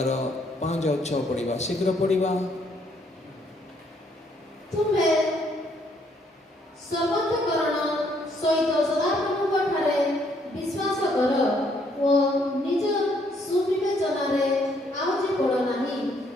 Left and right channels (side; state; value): both; normal; correlation 0.69